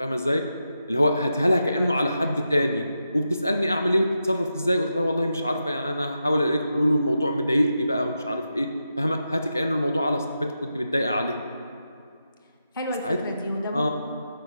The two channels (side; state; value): both; inverted; correlation -0.87